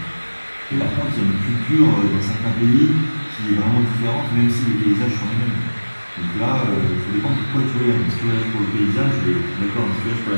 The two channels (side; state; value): both; inverted; correlation -1.00